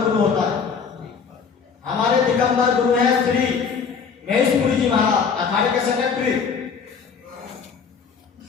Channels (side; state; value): right; quieter; 6.0 dB